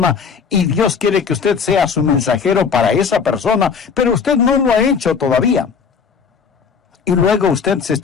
y Dios quiere que usted sea su mensajero para esa persona, pero usted no lo ha hecho todavía? Y luego usted se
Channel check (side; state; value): right; quieter; 6.0 dB